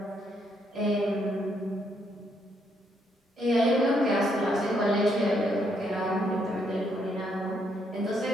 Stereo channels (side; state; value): both; normal; correlation 0.74